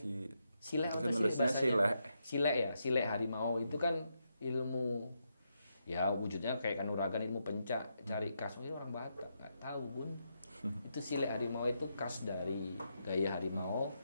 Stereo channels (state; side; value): inverted; both; correlation -0.82